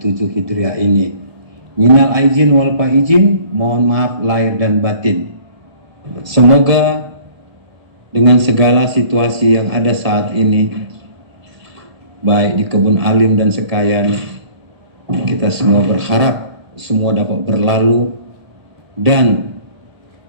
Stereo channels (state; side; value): late; left; 1.7 ms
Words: Hijriah ini. Minal aizin wal faizin, mohon maaf lahir dan batin. Semoga dengan segala situasi yang ada saat ini, baik di kebun alim dan sekayan, kita semua berharap semua dapat berlalu dan